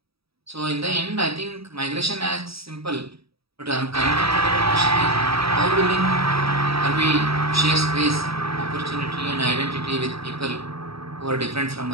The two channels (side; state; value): left; late; 0.77 ms